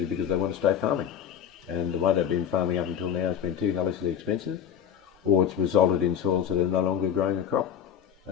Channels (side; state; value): right; quieter; 8.8 dB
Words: because they want to stay farming. And the way they've been farming up until now has been too hellishly expensive, or it's resulted in soils that are no longer growing a crop